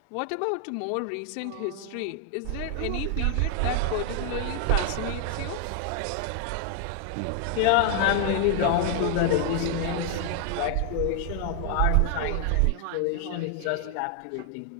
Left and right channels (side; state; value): both; different; correlation 0.00